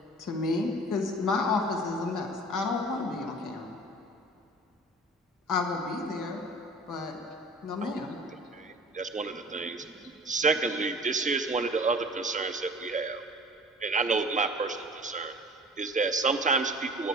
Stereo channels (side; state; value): both; normal; correlation 0.43